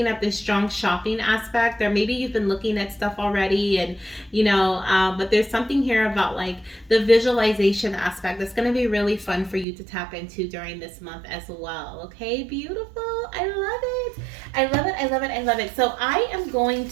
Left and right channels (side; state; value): left; drops out; at 9.7 s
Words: up this strong shopping aspect, or maybe you've been looking at stuff already, and you know, but there's something here about like the visualization aspect that's going to be really fun for you to tap into during this month as well. Okay, beautiful. I love it. I love it. I love it. I love it. So I am going